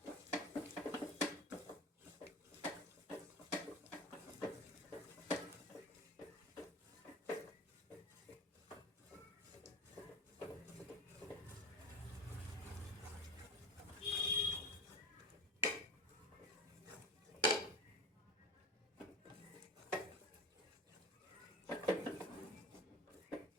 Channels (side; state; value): both; normal; correlation 0.30